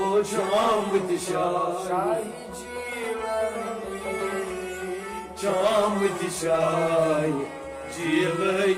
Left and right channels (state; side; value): identical; both; correlation 1.00